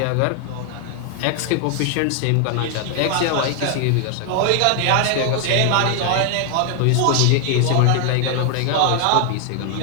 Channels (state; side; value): different; both; correlation 0.00